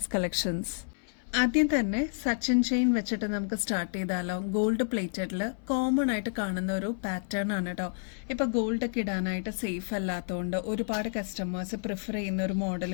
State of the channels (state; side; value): silent; right; 58 dB below the other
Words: collections. ആദ്യം തന്നെ സച്ചിൻ ചെയിൻ വെച്ചിട്ട് നമുക്ക് സ്റ്റാർട്ട് ചെയ്താലോ. ഗോൾഡ് പ്ലേറ്റഡിൽ കോമൺ ആയിട്ട് കാണുന്ന ഒരു പാറ്റേൺ ആണ് കേട്ടോ. ഇപ്പൊ ഗോൾഡ് ഒക്കെ ഇടാനായിട്ട് സേഫ് അല്ലാത്തതുകൊണ്ട് ഒരുപാട് കസ്റ്റമേഴ്സ് പ്രിഫർ ചെയ്യുന്ന ഒരു